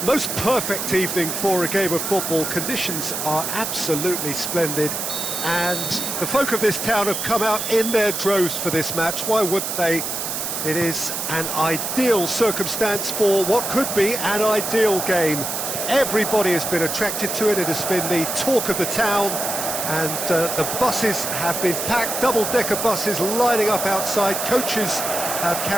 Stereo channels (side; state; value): right; noise; hiss, 3 dB below the sound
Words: most perfect evening for a game of football. Conditions are absolutely splendid and the folk of this town have come out in their droves for this match. Why wouldn't they? It is an ideal circumstance for what could be an ideal game. Everybody has been attracted to it. It has been the talk of the town, and the buses have been packed, double-decker buses lining up outside. Coaches have